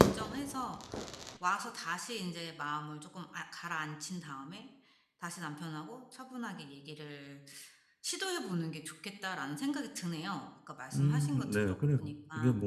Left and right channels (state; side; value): identical; both; correlation 1.00